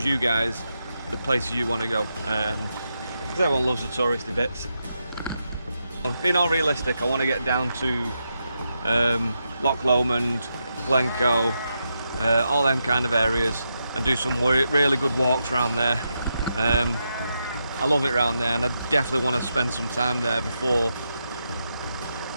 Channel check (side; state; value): both; inverted; correlation -0.85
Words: you guys the places you want to go because everyone loves the touristy bits. Being all realistic, I want to get down to Loch Lomond, Glencoe, all them kind of areas and do some really good walks around there. I love it around there and I definitely want to spend some time there before